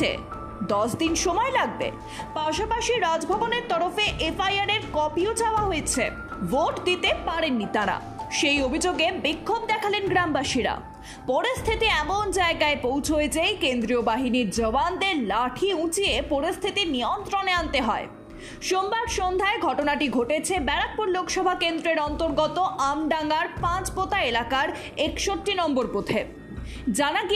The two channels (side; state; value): both; identical; correlation 1.00